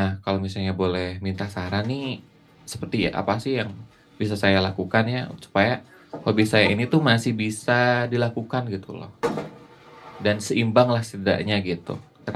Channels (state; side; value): identical; both; correlation 1.00